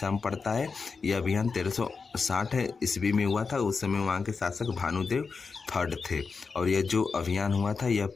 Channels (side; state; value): right; quieter; 4.9 dB